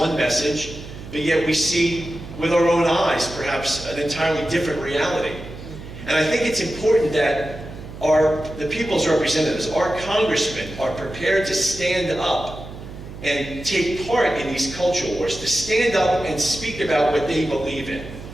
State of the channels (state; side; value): noise; right; hum, 13 dB below the sound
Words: message, but yet we see with our own eyes perhaps an entirely different reality. And I think it's important that the people's representatives, our congressmen, are prepared to stand up and take part in these cultural wars, to stand up and speak about what they believe in,